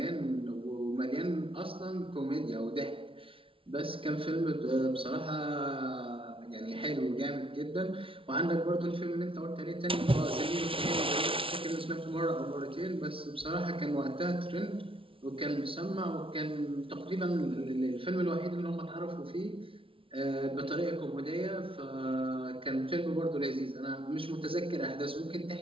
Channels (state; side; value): late; left; 0.26 ms